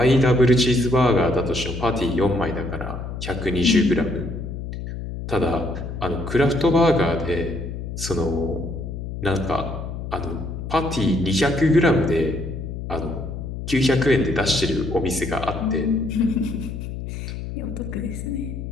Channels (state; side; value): noise; left; hum, 7 dB below the sound